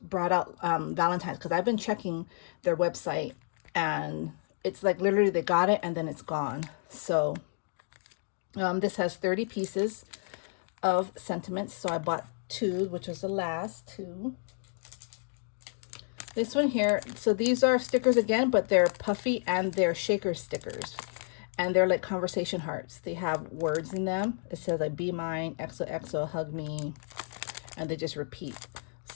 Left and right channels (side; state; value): right; silent; 57 dB below the other